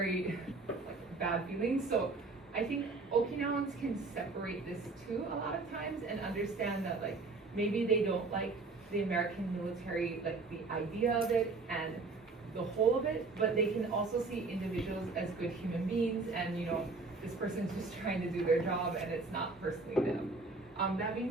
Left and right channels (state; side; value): quieter; left; 3.8 dB